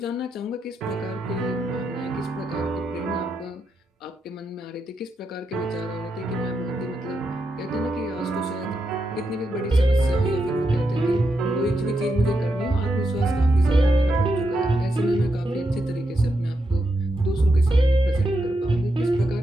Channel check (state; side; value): normal; both; correlation 0.84